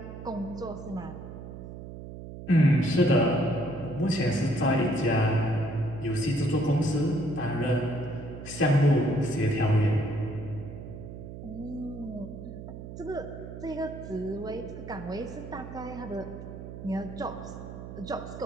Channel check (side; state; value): right; noise; hum, 11 dB below the sound